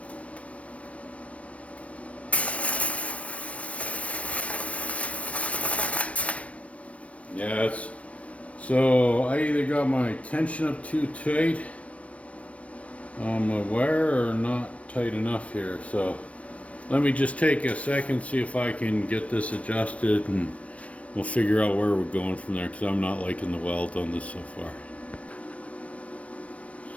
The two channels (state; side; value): late; right; 0.065 ms